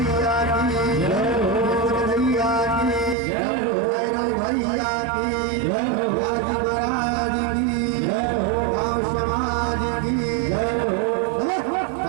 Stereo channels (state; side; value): drops out; left; at 3.2 s